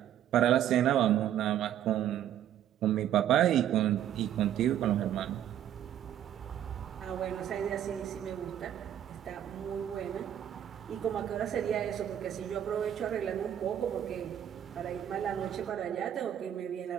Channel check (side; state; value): left; quieter; 10.8 dB